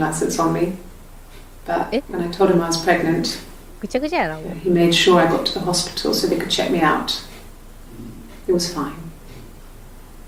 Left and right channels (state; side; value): identical; both; correlation 1.00